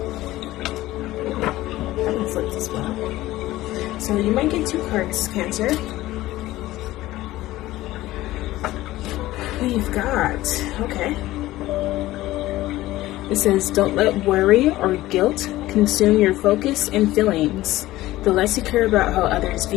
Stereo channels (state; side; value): quieter; right; 16.6 dB